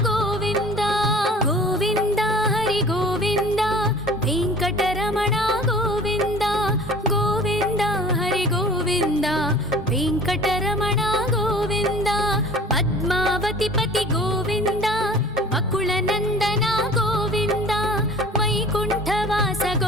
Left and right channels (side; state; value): both; normal; correlation 0.45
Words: गोविन्द गोविन्द हरि गोविन्द वेङ्कटरमण गोविन्द गोविन्द हरि गोविन्द वेङ्कटरमण गोविन्द। पद्मावतिपति गोविन्द वकुलनन्दन गोविन्द वैकुण्ठवास